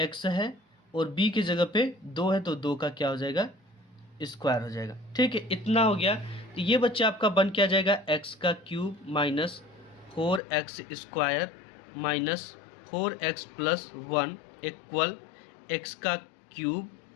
है और बी के जगह पे 2 है तो 2 का क्या हो जाएगा स्क्वायर हो जाएगा। ठीक है, इतना हो गया। तो ये बच्चा आपका बन क्या जाएगा, एक्स का cube minus 4x square minus 4x plus 1 equal x का क्यूब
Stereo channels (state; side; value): drops out; right; at 10.4 s